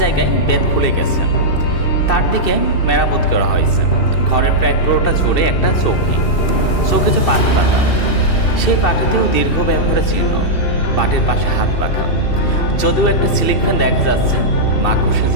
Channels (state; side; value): late; right; 2.7 ms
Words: বেত খুলে গেছে, তার দিকে মেরামত করা হয়েছে। ঘরের প্রায় পুরোটা জুড়ে একটা চৌকিতে পাটি পাতা, সেই পাটিতেও দীর্ঘ ব্যবহারের চিহ্ন। পাটির পাশে হাত পাখা, যদিও একটা সিলিং ফ্যান দেখা যাচ্ছে, মাকড়সে